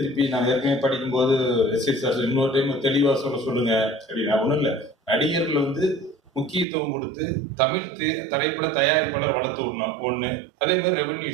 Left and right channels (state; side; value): drops out; left; at 6.7 s